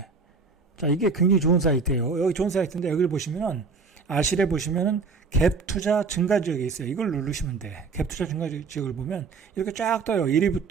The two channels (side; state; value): left; quieter; 4.8 dB